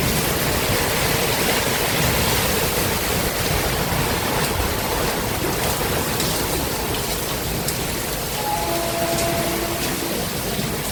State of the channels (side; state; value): both; identical; correlation 1.00